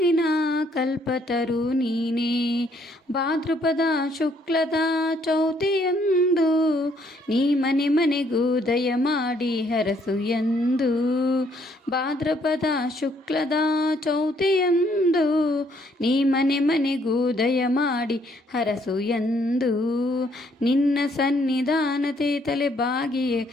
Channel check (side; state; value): both; normal; correlation 0.68